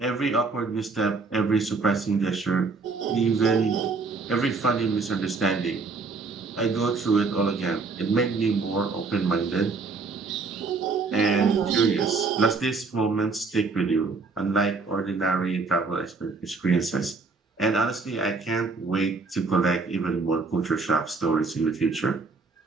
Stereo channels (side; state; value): left; quieter; 4.2 dB